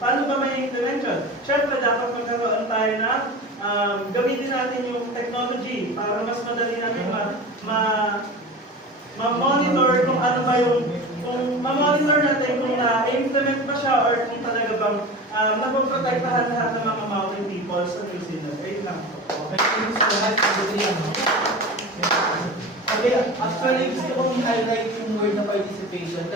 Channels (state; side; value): normal; both; correlation 0.32